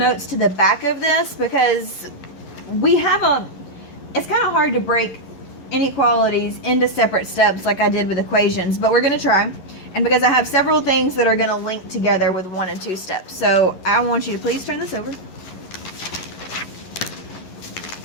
to the back of this because we have it's kind of hard to break inequalities into separate steps like I did with equations, but we're going to try. And because I have several things that are going to link together with 1 and 2 steps. So I want you to please turn this over.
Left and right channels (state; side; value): late; right; 11 ms